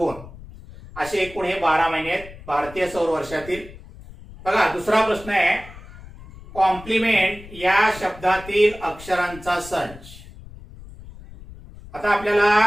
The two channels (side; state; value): left; noise; rumble, 17 dB below the sound